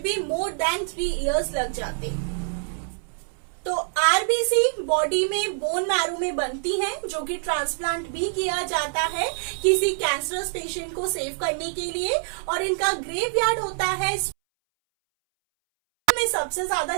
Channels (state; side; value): silent; left; 62 dB below the other